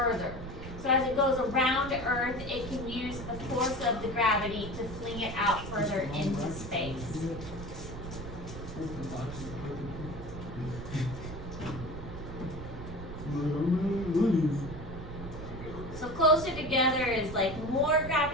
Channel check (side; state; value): right; noise; rumble, 9 dB below the sound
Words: So as it goes around Earth, it can use the force of the gravity to fling it out further into space. So closer together is like more